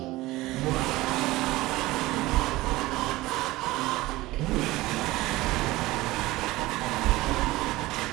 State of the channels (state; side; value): quieter; left; 18.9 dB